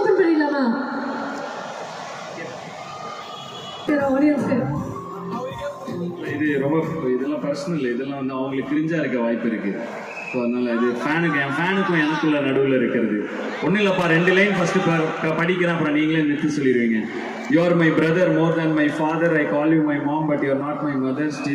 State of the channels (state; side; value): identical; both; correlation 1.00